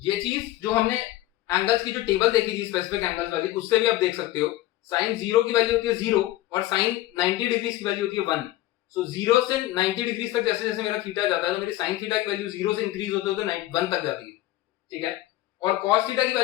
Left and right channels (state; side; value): quieter; right; 15.7 dB